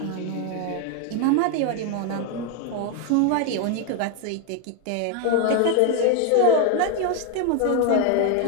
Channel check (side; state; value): both; different; correlation 0.01